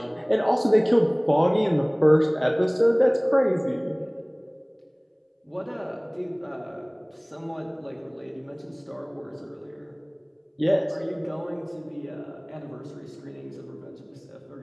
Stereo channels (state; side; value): identical; both; correlation 1.00